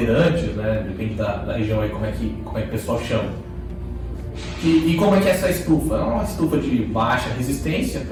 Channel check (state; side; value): identical; both; correlation 1.00